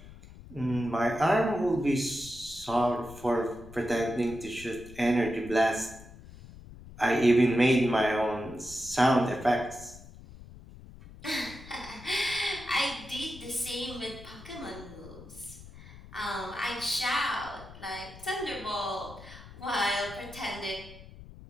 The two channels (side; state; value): left; noise; rumble, 17 dB below the sound